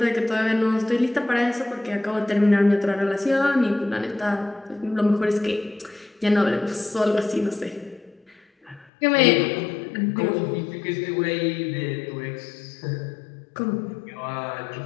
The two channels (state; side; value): drops out; right; at 8.8 s